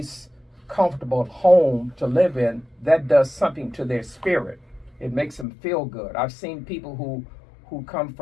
comfortable home to live in, that does something to their spirit. It makes them feel good. I've seen people who come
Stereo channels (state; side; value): drops out; right; at 5.5 s